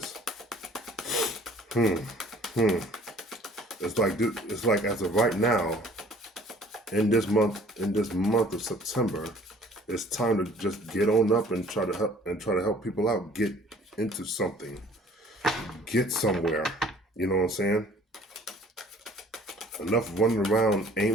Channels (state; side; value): normal; both; correlation 0.54